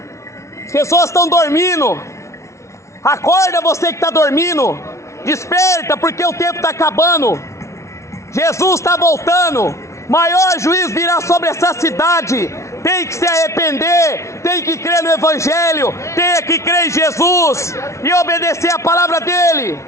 As pessoas estão dormindo. Acorda, você que está dormindo. Desperta, porque o tempo está acabando. Jesus está voltando. Maior juízo virá sobre essa cidade. Tem que se arrepender, tem que crer no Evangelho, tem que crer em Jesus e obedecer a palavra dele.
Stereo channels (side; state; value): right; late; 0.14 ms